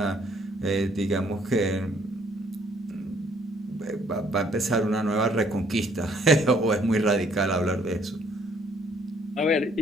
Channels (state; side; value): normal; both; correlation 0.64